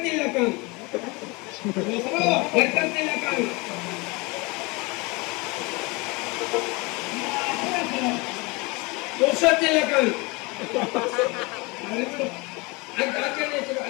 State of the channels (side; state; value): right; quieter; 26.5 dB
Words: ಖಾನ್. ಬರ್ಕತ್ತಿಲ್ಲ ಖಾನ್. ಪುರುಷೋತ್ತಿಲ್ಲ ಖಾನ್.